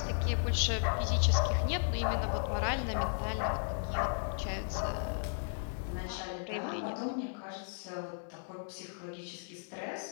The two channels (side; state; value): right; silent; digital silence